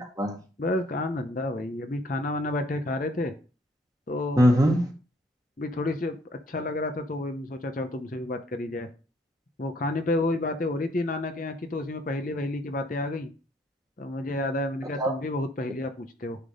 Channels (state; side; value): normal; both; correlation 0.64